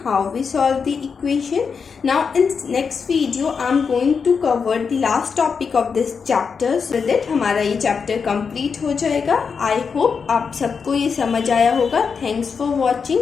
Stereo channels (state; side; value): quieter; right; 5.8 dB